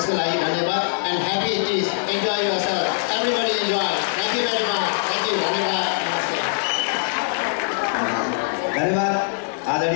लागि धन्यवाद and happy is enjoy yourself everybody enjoy. Thank you very much. Thank you. धन्यवाद। धन्यवाद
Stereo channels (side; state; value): right; silent; digital silence